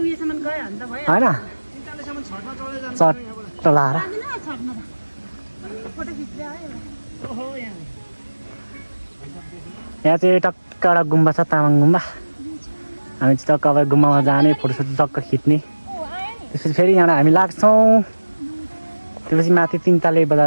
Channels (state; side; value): inverted; both; correlation -1.00